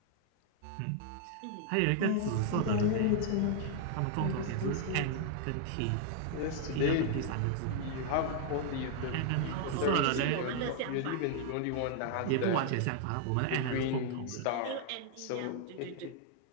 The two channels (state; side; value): different; both; correlation 0.00